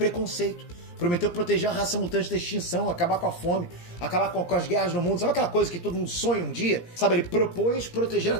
Prometeu proteger a raça mutante da extinção, acabar com a fome, acabar com as guerras no mundo. Sabe aquela coisa que todo mundo sonha um dia? Sabe, ele propôs proteger a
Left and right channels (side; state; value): right; late; 17 ms